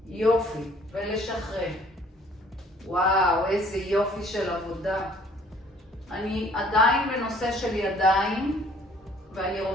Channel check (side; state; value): both; normal; correlation 0.57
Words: יופי, ולשחרר. וואו, איזה יופי של עבודה. אני עדיין בנושא של ידיים, ואני